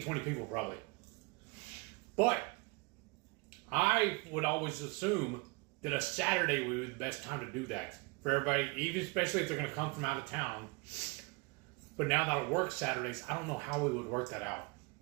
20 people probably. But I would always assume that a Saturday would be the best time to do that. For everybody, even especially if they're going to come from out of town. But now that it works Saturdays, I don't know how we would work that out.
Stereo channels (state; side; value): quieter; left; 28.2 dB